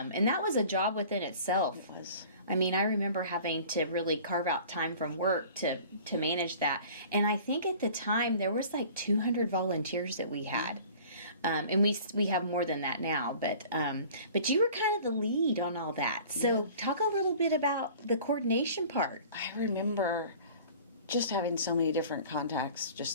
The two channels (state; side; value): inverted; both; correlation -0.46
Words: that was a job within itself. It was. I mean, I remember having to really carve out time from work to manage that. And I think at the time there was like 200 volunteers that we had. And we have more than that now, but you were kind of the lead on all that. So talk a little bit about the coordination part. I remember just having so many different contacts